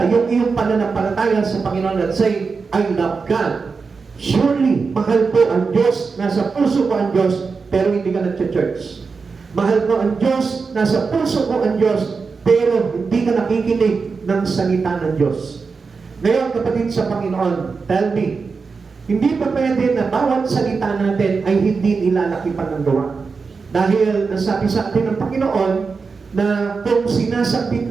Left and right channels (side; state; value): left; quieter; 4.8 dB